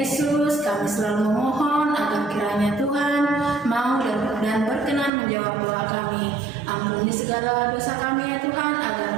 kami selalu memohon agar kiranya Tuhan mau dan berkenan menjawab doa kami. Ampuni segala dosa kami ya Tuhan, agar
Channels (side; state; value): left; drops out; at 5.1 s